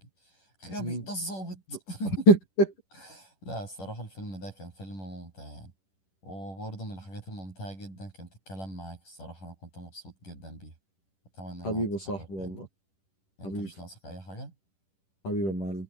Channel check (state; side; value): late; right; 10 ms